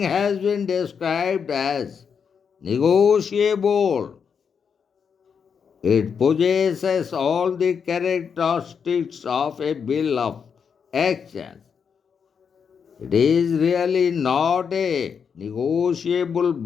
been described as negotiable, it possesses all the characteristics of a bill of exchange. It is really not a negotiable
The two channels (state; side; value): quieter; right; 6.6 dB